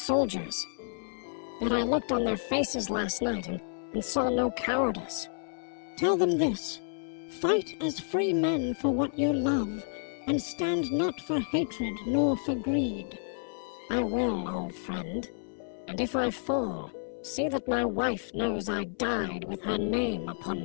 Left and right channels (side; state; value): right; silent; 58 dB below the other